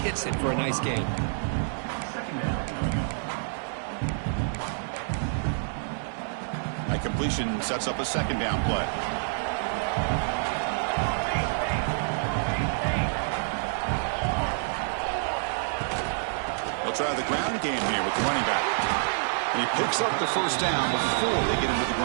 hits it for a nice gain. That completion sets up a second down play. They'll try the ground game here with the running back. And he picks up the first down before they get into the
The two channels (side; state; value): left; silent; digital silence